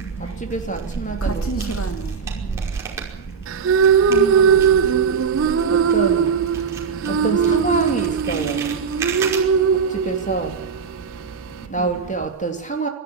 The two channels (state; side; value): quieter; left; 6.0 dB